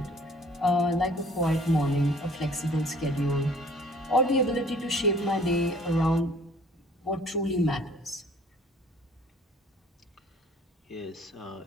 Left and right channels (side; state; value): both; normal; correlation 0.54